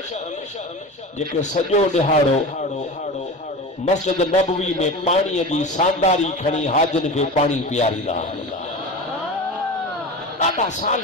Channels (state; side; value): normal; both; correlation 0.30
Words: जेके सॼो ॾिहाड़ो मस्जिद नबवी में पाणीअ जी सांदारी खणी हाजन खे पाणी पीआरींदा ॾाढा